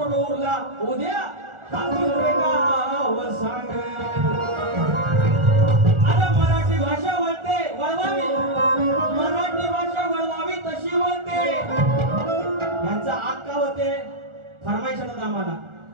उरला उद्या गाव सांग. अरे मराठी भाषा वळवावी मराठी भाषा वळवावी तशी वळते. यांचा आक्का होते फरमाईश आम्हाला.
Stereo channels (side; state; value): left; late; 1.4 ms